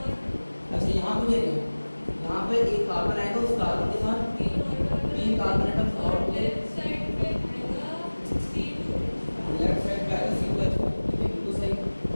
अच्छा यहाँ पे देखो, यहाँ पे एक कार्बन आएगा, उस कार्बन के साथ 3 कार्बन एटम्स और होंगे। लेफ्ट साइड पे आएगा C2H5, बिल्कुल सही।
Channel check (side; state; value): both; inverted; correlation -1.00